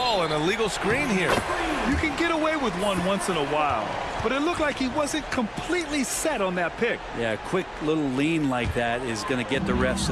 an illegal screen here. You can get away with one once in a while, but it looked like he wasn't completely set on that pick. Yeah, a quick little lean like that is going to get the ref's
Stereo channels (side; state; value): both; identical; correlation 1.00